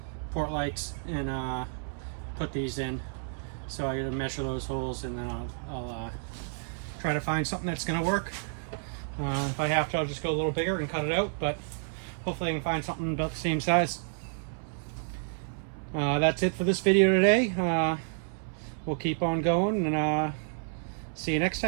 port lights and put these in. So I gotta measure those holes, and then I'll try to find something that's gonna work. If I have to, I'll just go a little bigger and cut it out, but hopefully I can find something about the same size. That's it for this video today. We'll keep on going, and see you next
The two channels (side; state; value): left; silent; 58 dB below the other